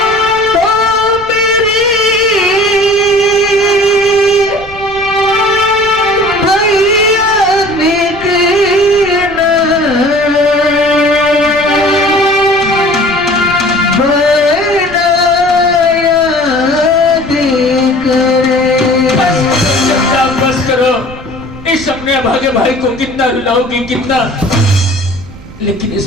अपने अभागे भाई को कितना रुलाओगी, कितना, लेकिन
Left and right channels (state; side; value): noise; right; rumble, 17 dB below the sound